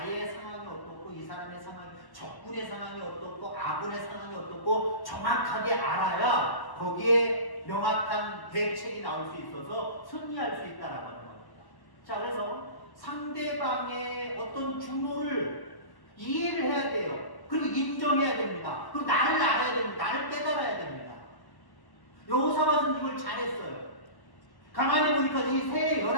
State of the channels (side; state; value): right; late; 1.1 ms